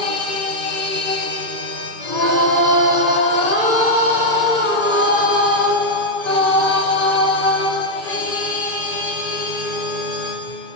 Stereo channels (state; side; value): late; left; 2.3 ms